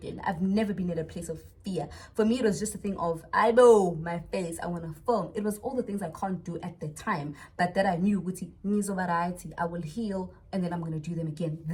I've never been in a place of fear. For me, it was just a thing of, I know my face, I want to film. It was all the things I can't do at the time, but that I knew, variety, I will heal, and then I'm going to do them again.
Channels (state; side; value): identical; both; correlation 1.00